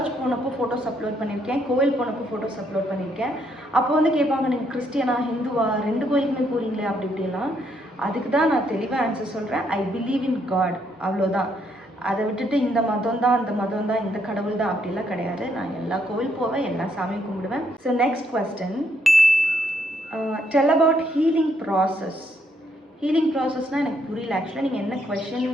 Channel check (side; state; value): both; normal; correlation 0.73